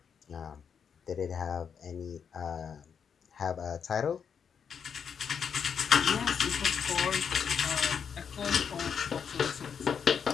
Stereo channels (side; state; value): right; quieter; 7.0 dB